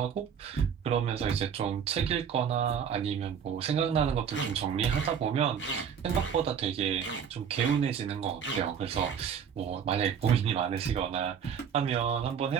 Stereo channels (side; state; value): left; quieter; 7.6 dB